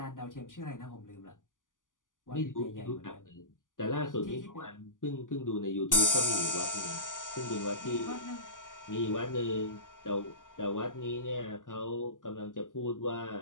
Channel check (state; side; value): late; right; 0.88 ms